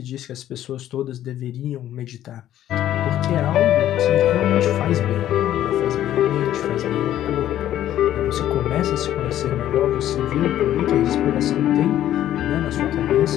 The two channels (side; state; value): right; quieter; 12.2 dB